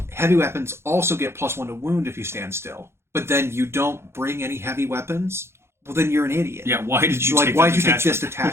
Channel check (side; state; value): left; late; 0.12 ms